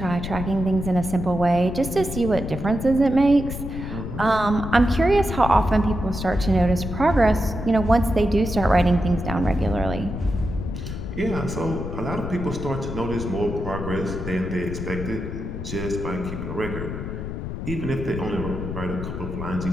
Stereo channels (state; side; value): noise; left; rumble, 6 dB below the sound